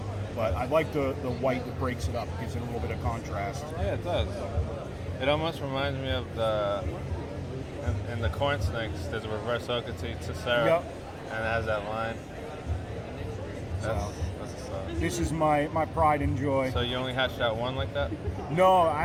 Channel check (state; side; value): identical; both; correlation 1.00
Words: But I like the white that breaks it up, gives it a little bit of contrast. Yeah, it does. It almost reminds me of in the corn snakes, there's a reverse Okatee Tessera, Yep. and it has that line. That's a stuff. This is my pride and joy. So you only hatched out one like that? No,